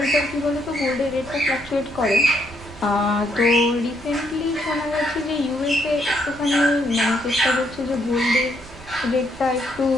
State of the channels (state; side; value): noise; right; rumble, 21 dB below the sound